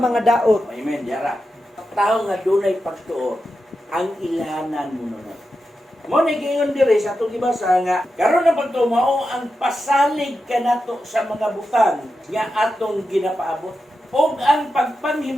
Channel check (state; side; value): normal; both; correlation 0.89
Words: daot. Amen, yara. Tao nga dunay pagtuo, ang ilhanan mo nun. Mo ni gingon diri sa atong gibasa nga karon na pagtuo mao ang pasalig kanato sa mga butang nga atong ginapaabot ug ang